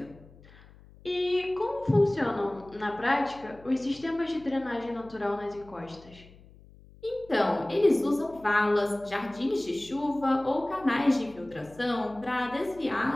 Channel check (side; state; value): left; noise; hum, 23 dB below the sound